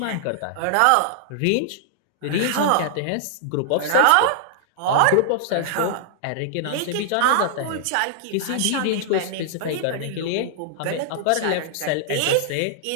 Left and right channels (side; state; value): both; different; correlation -0.01